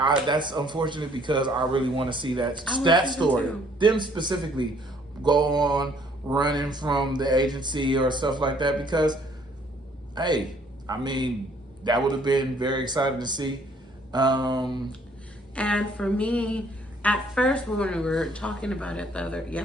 unfortunate because I really want to see that story. Them specifically go on running from the agency or stuff like that, because, hey, I mean, that would have been very exciting to see. And for me, at first when we were talking about it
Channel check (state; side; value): normal; both; correlation 0.62